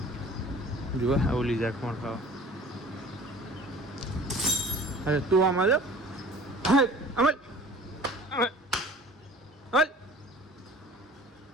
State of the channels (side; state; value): both; normal; correlation 0.46